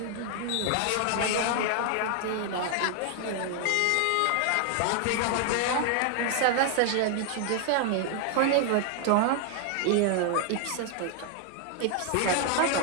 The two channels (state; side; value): different; both; correlation 0.00